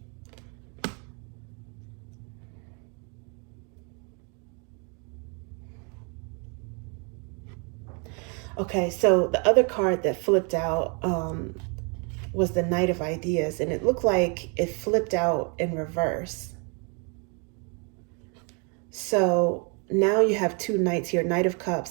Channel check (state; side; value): quieter; left; 35.7 dB